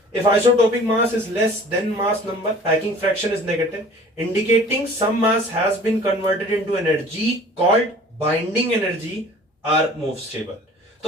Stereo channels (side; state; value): both; normal; correlation 0.47